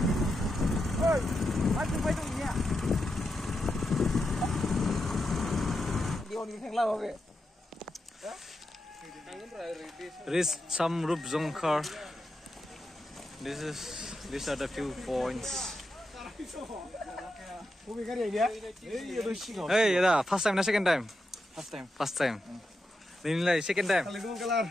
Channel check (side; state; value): both; normal; correlation 0.87